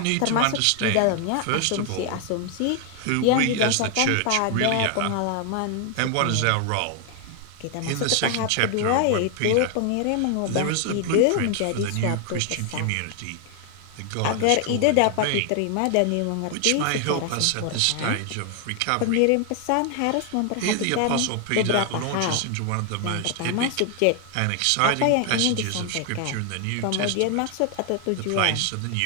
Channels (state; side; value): different; both; correlation 0.00